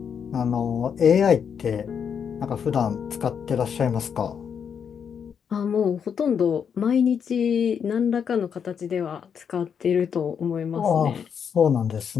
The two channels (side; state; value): right; quieter; 7.3 dB